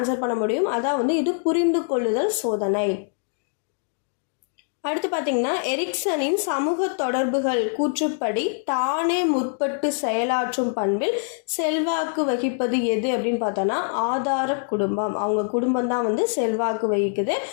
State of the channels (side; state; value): right; silent; 63 dB below the other